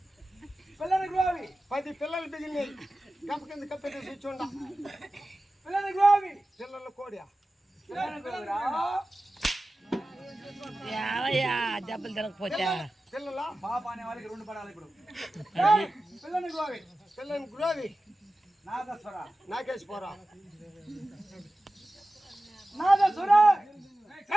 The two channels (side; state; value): both; normal; correlation 0.95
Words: పిల్లల గోవి 10 పిల్లలు బిగినాయి గంప కింద కప్పెట్టి కూర్చోండా పిల్లల గోవి పిల్లల కోడియా పిల్లల గోవిరా ఏమయ్యా దెబ్బలు తిరగపోతే పిల్లల పాప అనే వాళ్ళకి 2 పడాలి ఇప్పుడు పిల్లల గోవి పిల్లని గురోవి నాదస్వర నాకేసి పోరా నాదస్వర